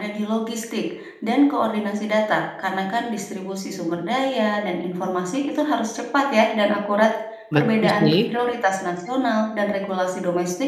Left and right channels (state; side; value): identical; both; correlation 1.00